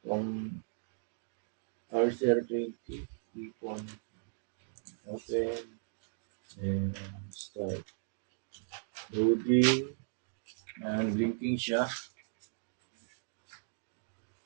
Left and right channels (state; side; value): silent; left; digital silence